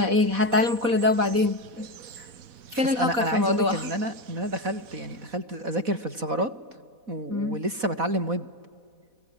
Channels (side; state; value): left; late; 4.1 ms